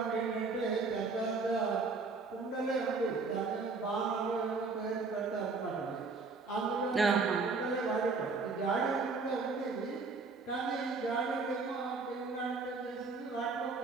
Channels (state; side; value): quieter; left; 4.2 dB